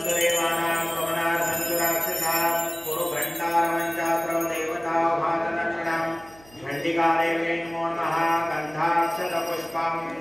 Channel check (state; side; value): noise; right; hum, 25 dB below the sound